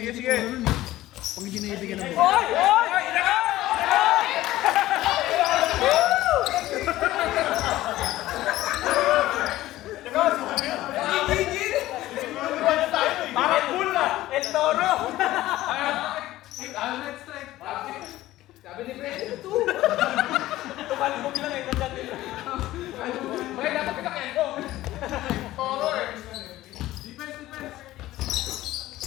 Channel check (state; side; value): quieter; right; 15.8 dB